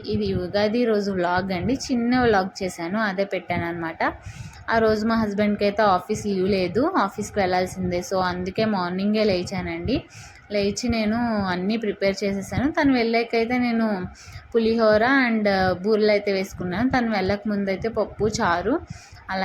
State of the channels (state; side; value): identical; both; correlation 1.00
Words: ఇది ఉగాది రోజు వ్లాగ్ అండి. చిన్న వ్లాగ్ చేశాను, అదే పెట్టాను అనమాట. ఆ రోజు మా హస్బెండ్కి అయితే ఆఫీస్ లీవ్ లేదు, ఆఫీస్కి వెళ్ళాల్సిందే. సో అందుకే మార్నింగే లేచానండి. లేచి నేను అన్నీ ప్రిపేర్ చేసేసాను. తను వెళ్ళాకైతే నేను పులిహోర అండ్ బూరెలు అయితే వేసుకున్నాను. తను వెళ్ళక ముందు అయితే పప్పు, చారు,